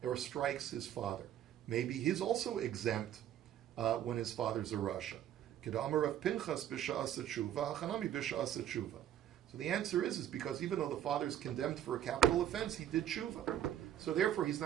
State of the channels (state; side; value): quieter; left; 11.0 dB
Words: or strikes his father? Maybe he's also exempt when his father's a rasha. Kedamar of Pinchas b'sha'as tshuva, Hanami b'sha'as tshuva. So the answer is because even though the father is condemned for a capital offense, he did tshuva. So therefore, he's